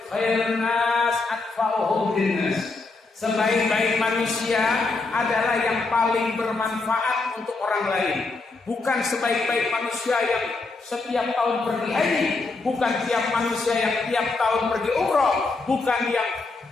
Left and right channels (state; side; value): quieter; right; 3.7 dB